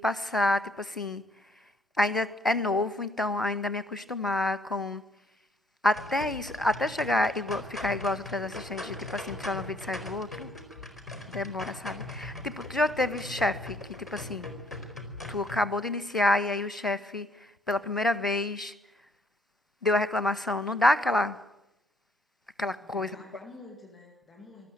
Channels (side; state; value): both; normal; correlation 0.66